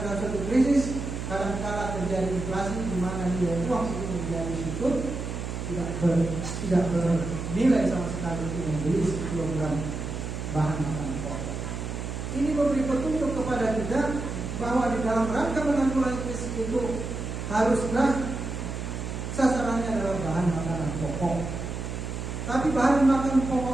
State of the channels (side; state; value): right; noise; hum, 5 dB below the sound